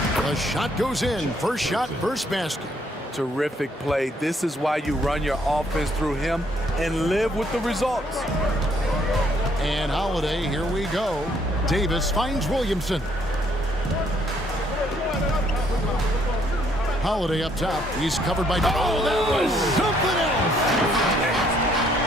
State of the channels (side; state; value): both; normal; correlation 0.68